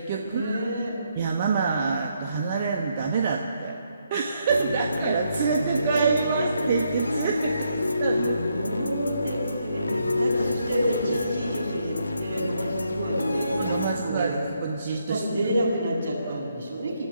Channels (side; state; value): both; inverted; correlation -0.77